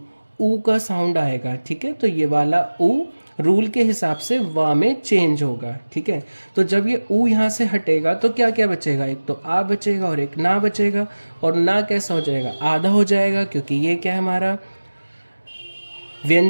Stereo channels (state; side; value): inverted; both; correlation -1.00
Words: ऊ का साउंड आएगा, ठीक है, तो ये वाला ऊ रूल के हिसाब से वा में चेंज होगा, ठीक है। तो जब ये ऊ यहाँ से हटेगा तो क्या क्या बचेगा, एक तो आ बचेगा और एक ना बचेगा, और ना कैसा हो जाएगा, आधा हो जाएगा, क्योंकि ये क्या है, हमारा